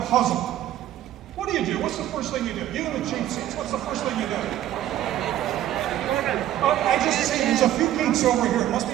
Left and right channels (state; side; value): quieter; left; 12.8 dB